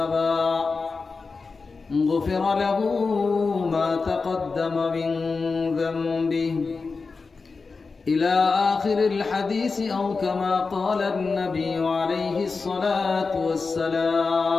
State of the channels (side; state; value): right; quieter; 4.4 dB